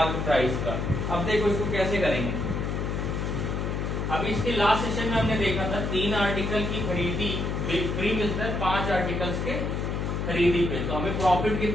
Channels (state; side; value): noise; left; hum, 1 dB below the sound